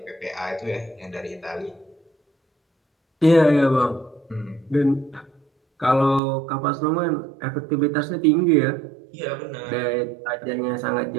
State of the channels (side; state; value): left; drops out; at 6.2 s